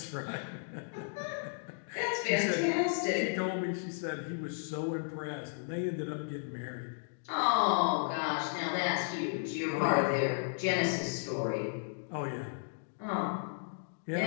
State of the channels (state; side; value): silent; right; digital silence